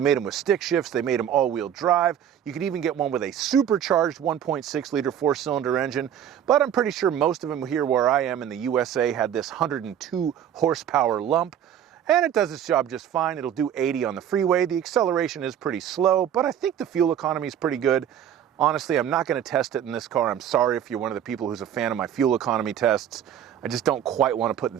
them with stick shifts, they made them all-wheel drive. You could even get one with a supercharged 1.6 liter four-cylinder engine, but I'm pretty sure most of them here where I am in the USA had this 102 horsepower lump, and it does its job just fine. It'll do 80 on the freeway. The acceleration is pretty slow, but I think the fuel economy is pretty good. Honestly, I'm not going to test it in this car. I'm sorry if you're one of the people who's a fan of my fuel economy tests. I just don't quite want to put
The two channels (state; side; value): quieter; left; 9.7 dB